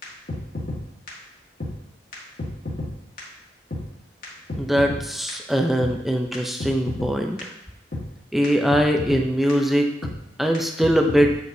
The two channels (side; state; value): both; normal; correlation 0.88